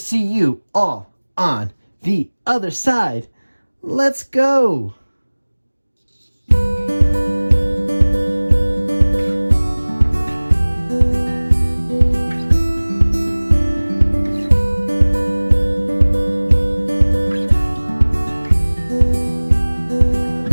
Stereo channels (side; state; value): both; inverted; correlation -1.00